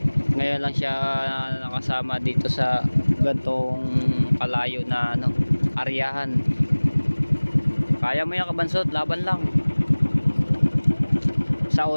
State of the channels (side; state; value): both; inverted; correlation -1.00